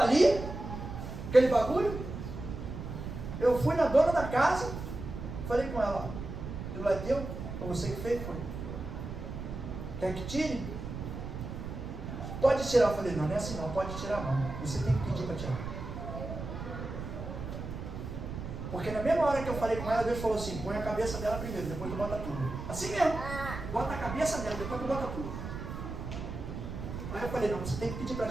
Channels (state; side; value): noise; right; rumble, 7 dB below the sound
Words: ali, aquele bagulho. Eu fui na dona da casa, falei com ela, aquilo é teu? Foi você que fez? Foi. Quer que tire? Pode tirar. Eu falei, não é assim não, pode tirar não. Você tem que pedir para tirar. Porque na mesma hora que eu falei com ela, Deus falou assim, põe a cabeça dela primeiro, depois tu bota tudo. Assim mesmo. Bota a cabeça dela, depois tu bota tudo. Aí eu falei, não, você tem que pedir para